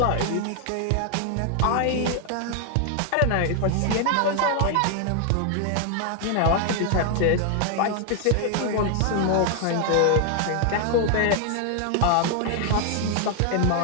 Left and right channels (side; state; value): both; different; correlation 0.00